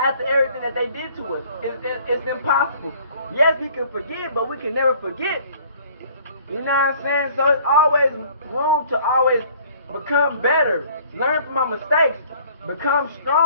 everything that they did to us? It's impossible. Yes, we can forgive, but we can never forget. You know what I'm saying? So it's always room to always become better, learn from our mistakes, become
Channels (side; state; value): both; inverted; correlation -0.55